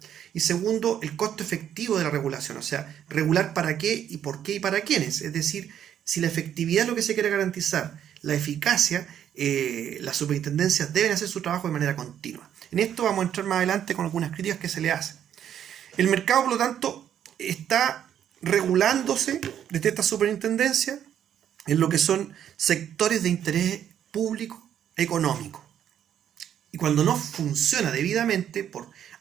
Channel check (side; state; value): left; quieter; 9.8 dB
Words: y segundo, el costo efectivo de la regulación, o sea, regular para qué y para quiénes, es decir, si la efectividad es lo que se quiere garantizar, la eficacia, las superintendencias deben hacer su trabajo de manera continua. En esto vamos a entrar más adelante con algunas críticas que se le hacen. El mercado, por lo tanto, está regulándose desde esta superintendencia en lo que son sectores de interés público económico. Y cuando no funciona debidamente, por